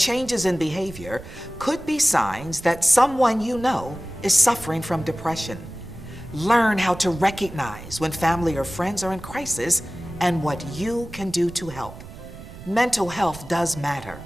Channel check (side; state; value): right; noise; rumble, 15 dB below the sound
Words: changes in behavior could be signs that someone you know is suffering from depression. Learn how to recognize when family or friends are in crisis and what you can do to help. Mental health does matter.